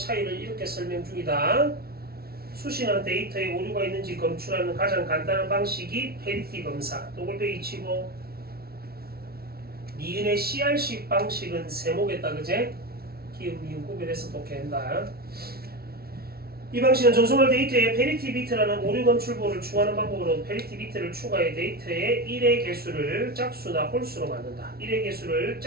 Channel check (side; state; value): left; late; 0.44 ms